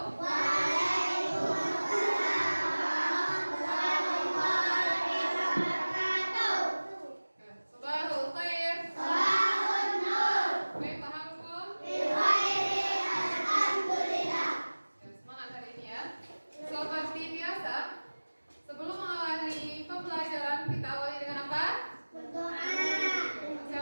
Sabahul khair. Sabahun nur. Kaifa halukum? Alhamdulillah. Semangat hari ini ya. Seperti biasa, sebelum mengawali pembelajaran kita awali dengan apa? Berdoa.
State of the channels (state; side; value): inverted; both; correlation -1.00